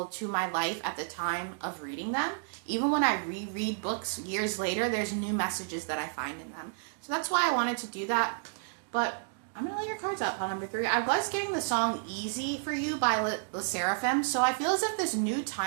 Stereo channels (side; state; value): left; silent; digital silence